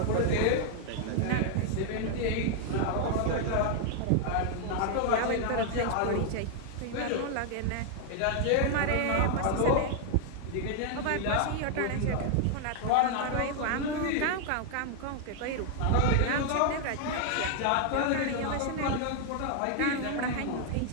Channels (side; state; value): both; different; correlation 0.00